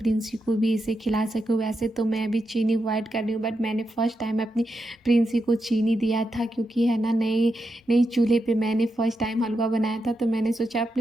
को भी इसे खिला सकूं। वैसे तो मैं अभी चीनी अवॉइड कर रही हूँ, बट मैंने फ़र्स्ट टाइम अपनी प्रिंसी को चीनी दिया था, क्योंकि है ना नए नई चूल्हे पे मैंने फ़र्स्ट टाइम हलवा बनाया था, तो मैंने सोचा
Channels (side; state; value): both; normal; correlation 0.86